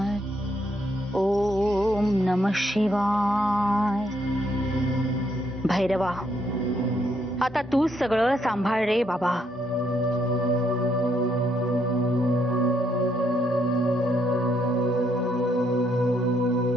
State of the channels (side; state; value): both; normal; correlation 0.73